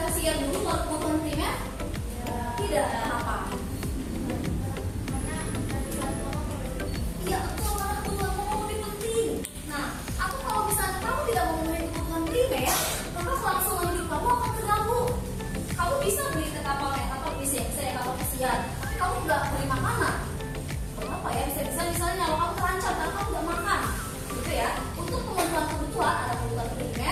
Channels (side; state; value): both; identical; correlation 1.00